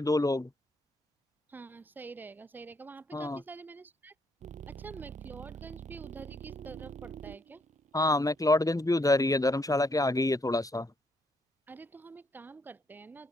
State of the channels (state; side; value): normal; both; correlation 0.72